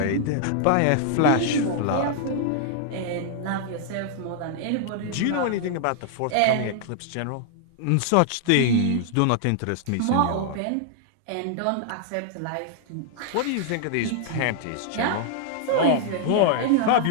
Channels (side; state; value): both; different; correlation -0.01